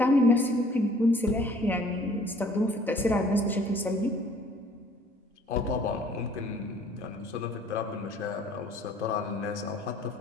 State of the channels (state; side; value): normal; both; correlation 0.55